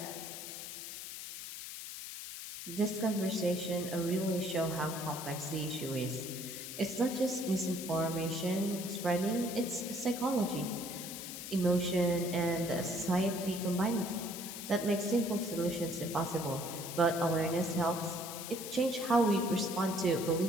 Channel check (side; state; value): left; noise; hiss, 9 dB below the sound